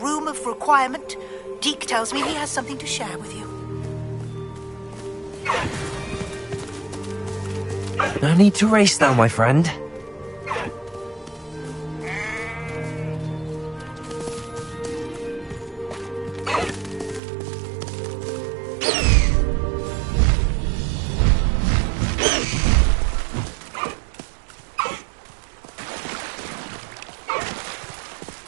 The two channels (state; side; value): drops out; left; at 17.2 s